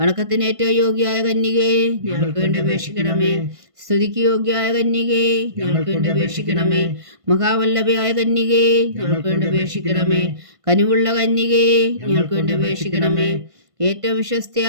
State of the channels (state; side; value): late; left; 1.5 ms